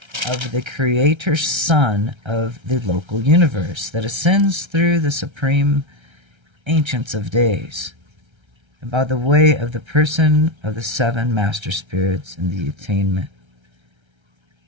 of the Creator Son of the local universe that ascends through the supreme ancients of days, and by the way of the person of the 7 master spirits in the attainment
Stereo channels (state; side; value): late; left; 1.3 ms